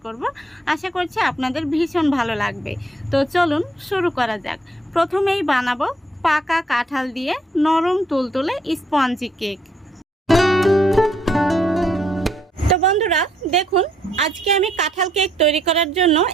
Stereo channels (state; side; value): normal; both; correlation 0.70